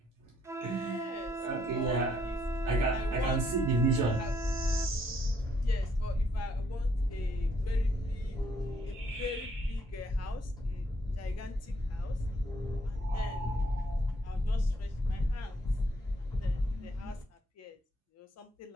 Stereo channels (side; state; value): both; normal; correlation 0.70